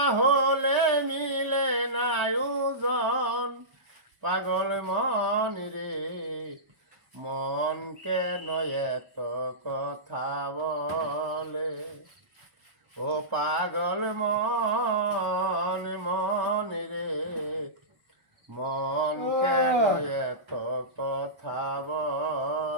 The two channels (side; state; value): left; late; 1.0 ms